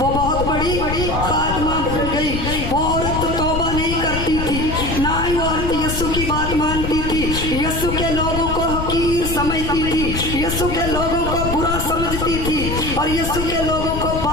बहुत बड़ी खादमा बन गई। वो औरत तौबा नहीं करती थी, ना ही वो औरत यीशु की बात मानती थी, यीशु के लोगों को हकीर समझती थी, यीशु के लोगों को बुरा समझती थी, और यीशु के लोगों को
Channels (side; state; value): left; noise; rumble, 4 dB below the sound